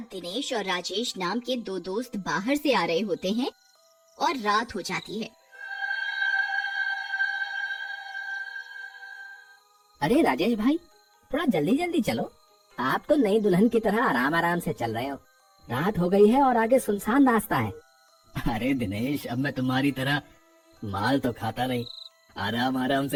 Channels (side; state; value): both; identical; correlation 1.00